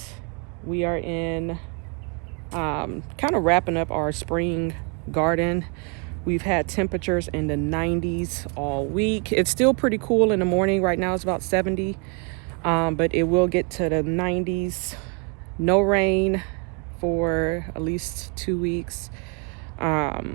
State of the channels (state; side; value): quieter; left; 35.7 dB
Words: We are in kind of wrapping up our spring garden. We've had temperatures in the 90s all week. It's still pretty cool in the morning. Right now it's about 70, but it will get to the 90s. No rain for at least 2 weeks.